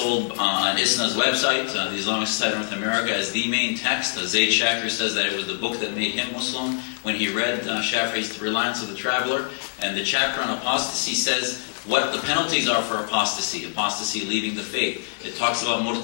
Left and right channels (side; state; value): right; silent; 62 dB below the other